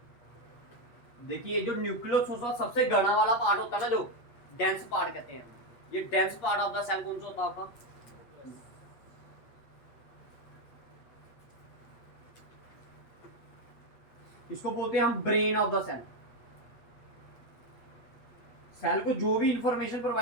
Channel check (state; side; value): late; right; 8.5 ms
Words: देखिए जो न्यूक्लियस होता है सबसे घना वाला पार्ट होता है ना, जो डेंस पार्ट कहते हैं, ये dense part of the cell कौन सा होता है आपका? इसको बोलते हैं हम brain of the cell. Cell को जो भी इंफॉर्मेशन